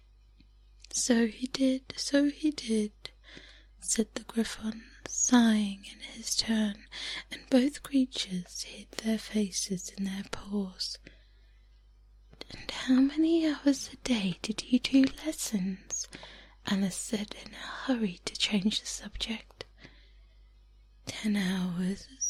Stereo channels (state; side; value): identical; both; correlation 1.00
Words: So he did," said the Gryphon, sighing in his turn, and both creatures hid their faces in their paws. "And how many hours a day did you do lessons?" Alice said in a hurry to change the subject. 10 hours